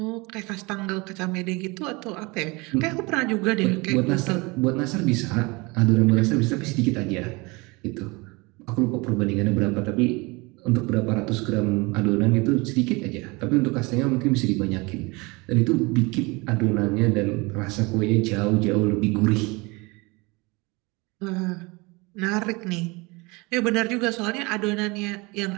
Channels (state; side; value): quieter; left; 25.6 dB